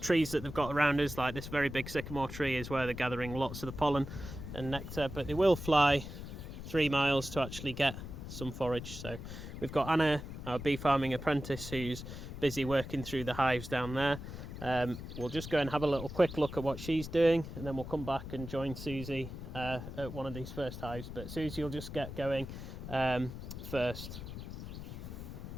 trees that they've got around us, like this very big sycamore tree, is where they're gathering lots of the pollen and nectar, but they will fly 3 miles to actually get some forage. So we've got Anna, our bee farming apprentice, who's busy working through the hives down there. We'll just go and have a little quick look at what she's doing, and then we'll come back and join Susie at one of these first hives. But Susie will just get going first.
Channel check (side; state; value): left; noise; rumble, 9 dB below the sound